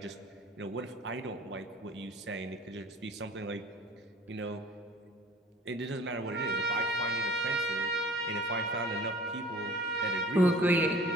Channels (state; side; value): normal; both; correlation 0.46